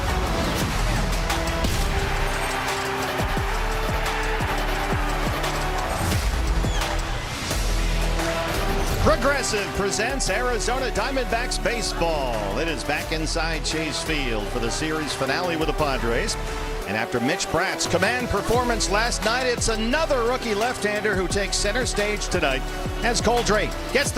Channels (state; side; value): identical; both; correlation 1.00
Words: Progressive presents Arizona Diamondbacks baseball. It is back inside Chase Field for the series finale with the Padres. And after Mitch Bratt's command performance last night, it's another rookie left-hander who takes center stage tonight as Cole Drake gets